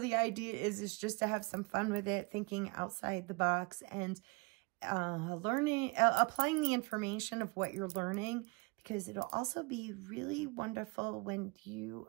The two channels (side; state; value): left; quieter; 29.4 dB